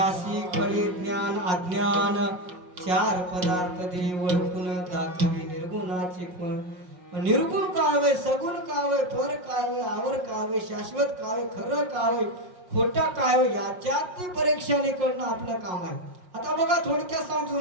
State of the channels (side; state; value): left; late; 5.5 ms